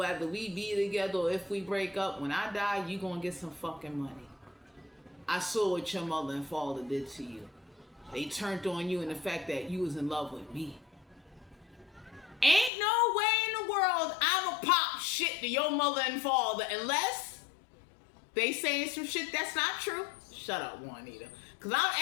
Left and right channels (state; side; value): drops out; right; at 12.7 s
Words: we be together or if we break up, when I die, you gonna get some fucking money. I saw what your mother and father did to you. They turned on you in the fact that you was in love with me. Ain't no way in the world I'ma pop shit to your mother and father unless they saying some shit that's not true. Shut up, Juanita. Because